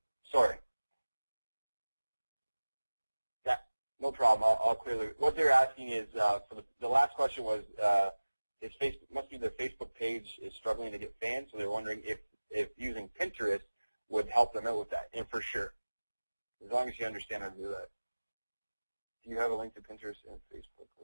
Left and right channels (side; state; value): both; inverted; correlation -1.00